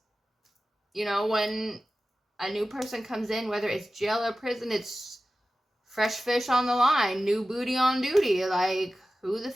when a new person comes in, whether it's jail or prison, it's fresh fish on the line, new booty on duty. Like, who the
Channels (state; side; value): normal; both; correlation 0.95